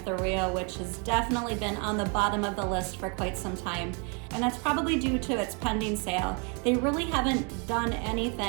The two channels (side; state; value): left; quieter; 35.6 dB